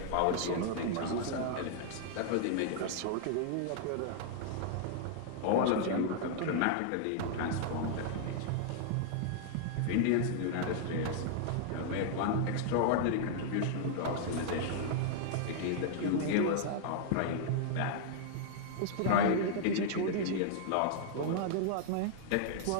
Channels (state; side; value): different; both; correlation -0.01